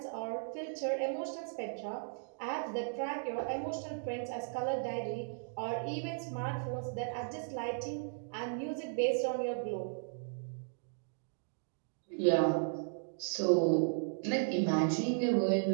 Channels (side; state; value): left; silent; digital silence